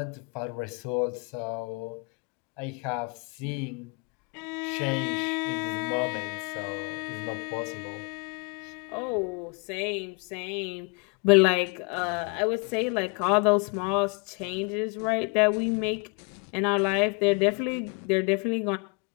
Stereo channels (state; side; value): quieter; right; 31.5 dB